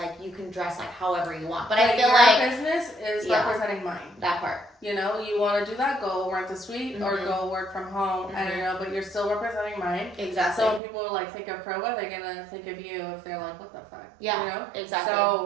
you can dress like however you want. But I feel your like business is Yeah. representing mine. that part. You know, you want to do that, go rent a suite or Mhm. go work from home. I don't know, but you're still representing mine. Exactly. So when people like think of Proba, they're gonna think of you if they're like, what the fuck? Yeah, You know? exactly.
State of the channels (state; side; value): drops out; left; at 10.8 s